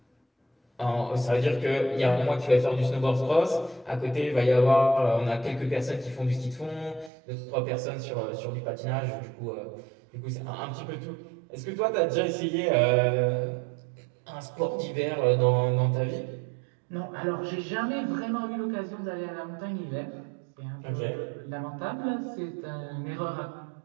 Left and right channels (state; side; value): drops out; left; at 7.1 s